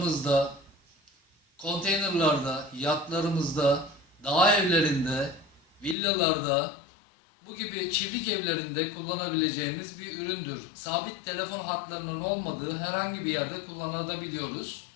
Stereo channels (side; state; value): right; drops out; at 6.0 s